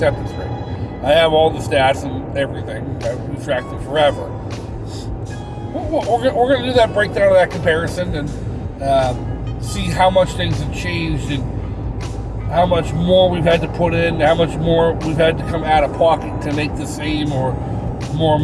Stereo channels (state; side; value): identical; both; correlation 1.00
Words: rate. I have all the stats and everything. We've tracked them forever. We're going to do that breakdown of that comparison and see how much things have changed and how much more we've had to put in, how much more we've had to come out of pocket to make the same or more